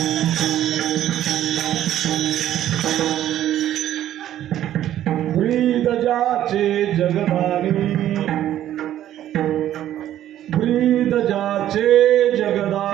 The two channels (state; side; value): quieter; left; 12.1 dB